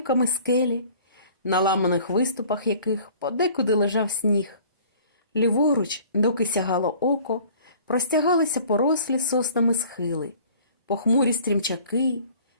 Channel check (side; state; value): both; inverted; correlation -0.51